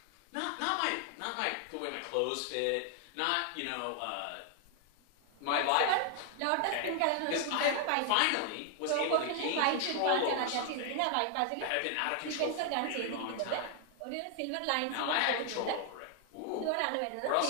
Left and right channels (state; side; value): different; both; correlation 0.00